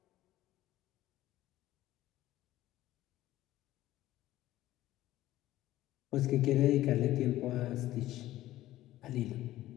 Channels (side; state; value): right; quieter; 15.0 dB